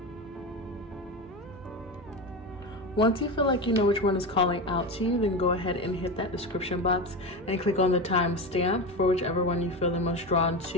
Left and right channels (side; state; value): both; normal; correlation 0.21